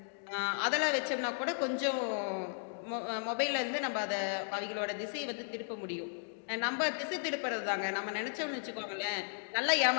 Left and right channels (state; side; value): silent; right; digital silence